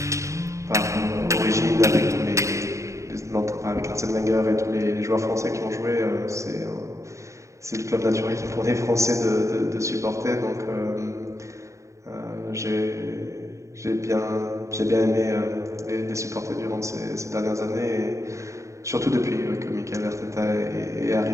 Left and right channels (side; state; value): left; late; 0.15 ms